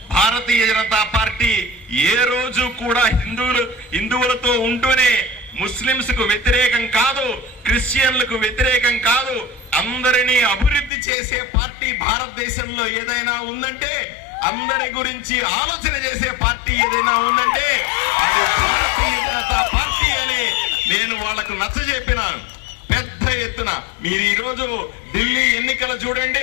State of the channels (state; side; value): drops out; right; at 10.9 s